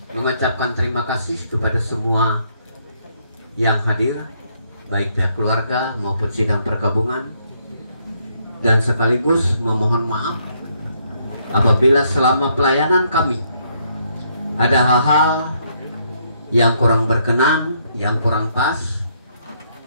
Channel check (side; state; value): both; inverted; correlation -0.72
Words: mengucapkan terima kasih kepada semua yang hadir, baik pihak keluarga maupun sidang perkabungan, dan sekaligus memohon maaf apabila selama pelayanan kami ada hal-hal yang kurang berkenan, yang kurang pas.